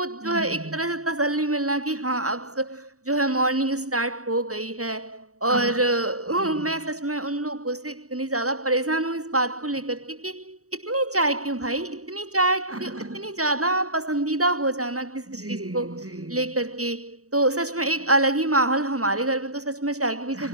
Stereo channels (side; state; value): left; late; 0.65 ms